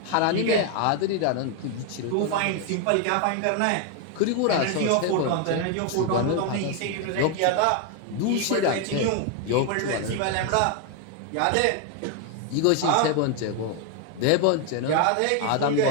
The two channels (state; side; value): different; both; correlation 0.01